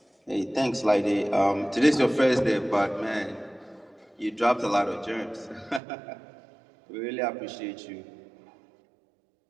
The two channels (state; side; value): drops out; left; at 5.8 s